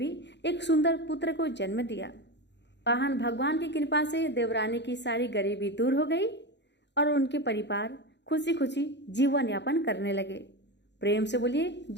एक सुंदर पुत्र को जन्म दिया। वाहन भगवान की कृपा से देवरानी की सारी गरीबी दूर हो गई और उनके परिवार खुशी खुशी जीवन यापन करने लगे। प्रेम से बोलिए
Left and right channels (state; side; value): late; right; 0.51 ms